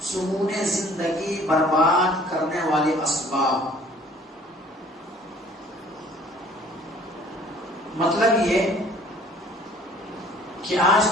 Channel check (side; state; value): both; normal; correlation 0.54